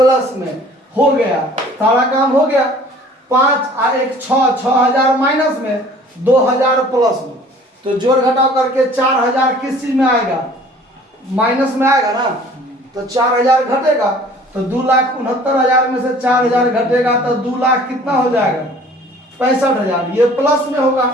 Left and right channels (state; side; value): normal; both; correlation 0.51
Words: में हो गया। सारा काम हो गया। 5 और 1 6, 6,000 माइनस में, 2,000 प्लस में। तो जोड़ घटाव करके 4,000 किस चीज में आएगा माइनस में आएगा ना, तो 4,000 घटेगा। तो 2,69,000 में से 4,000 घटेगा तो 2 लाख कितना हो जाएगा 65,000। ये प्लस में होगा